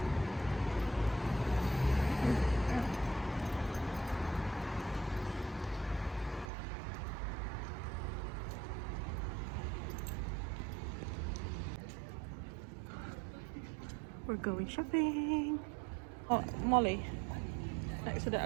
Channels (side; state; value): left; drops out; at 6.5 s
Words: We're going shopping. Oh, Molly. Next to the